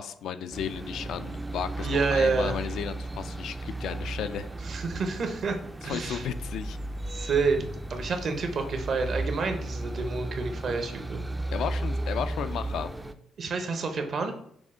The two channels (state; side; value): normal; both; correlation 0.79